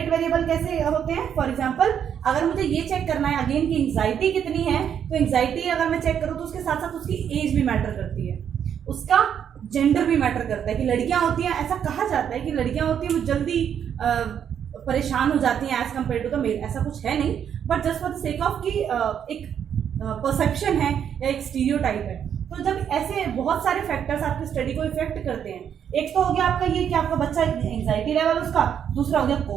वेरिएबल कैसे होते हैं? फॉर एग्जांपल, अगर मुझे ये चेक करना है अगेन की एंग्जाइटी कितनी है, तो एंग्जाइटी अगर मैं चेक करूँ तो उसके साथ साथ उसकी एज भी मैटर करती है, उसका जेंडर भी मैटर करता है। कि लड़कियां होती हैं, ऐसा कहा जाता है कि लड़कियां होती हैं वो जल्दी परेशान हो जाती हैं as compare to the male. ऐसा कुछ है नहीं, but just for the sake of कि एक परसेप्शन है या एक स्टीरियोटाइप है। तो जब ऐसे बहुत सारे फैक्टर्स आपकी स्टडी को इफेक्ट करते हैं, एक तो हो गया आपका ये कि आपका बच्चा एंग्जाइटी लेवल उसका, दूसरा हो गया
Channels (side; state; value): left; quieter; 8.6 dB